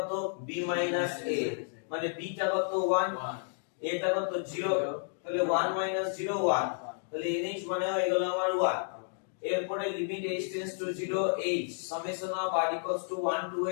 b - a মানে b টা কত 1 a টা কত 0 তাহলে 1 - 0 1 তাহলে nh মানে হয়ে গেল আমার 1 এরপরে limit h tends to 0 h summation of r equals to 1 to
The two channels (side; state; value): right; silent; digital silence